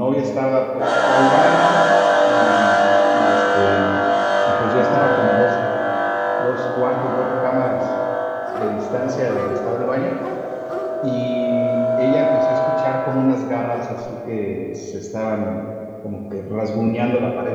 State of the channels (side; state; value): both; identical; correlation 1.00